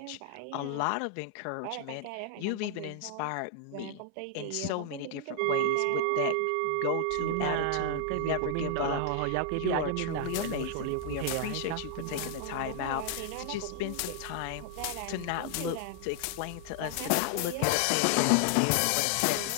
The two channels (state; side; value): different; both; correlation 0.00